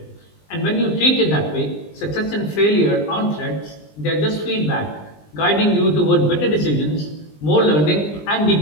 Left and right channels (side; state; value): right; late; 20 ms